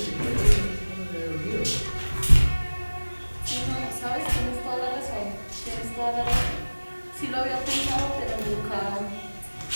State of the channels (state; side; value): inverted; both; correlation -1.00